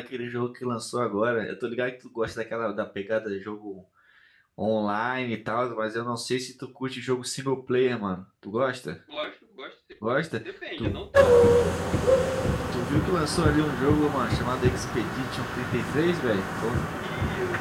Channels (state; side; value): identical; both; correlation 1.00